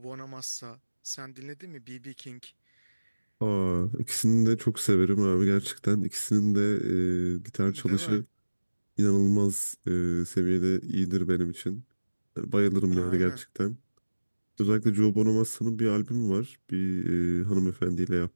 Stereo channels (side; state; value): both; inverted; correlation -1.00